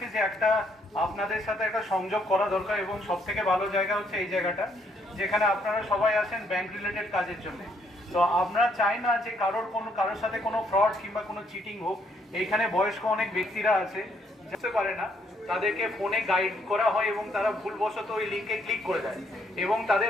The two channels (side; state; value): both; normal; correlation 0.71